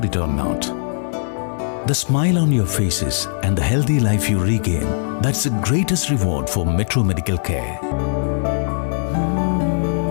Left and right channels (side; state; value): right; silent; digital silence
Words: it or not. The smile on your faces and the healthy life you regain, that's the greatest reward for Metro Medical Care.